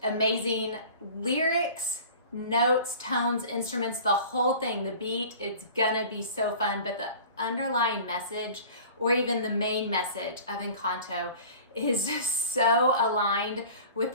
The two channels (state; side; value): inverted; both; correlation -0.42